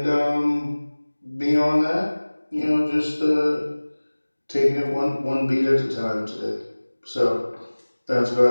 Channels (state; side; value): inverted; both; correlation -1.00